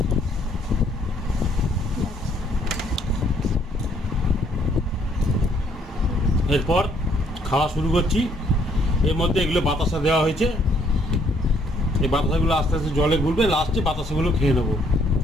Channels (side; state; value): both; normal; correlation 0.66